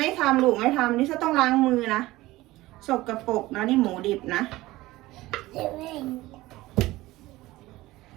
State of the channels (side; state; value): left; quieter; 18.2 dB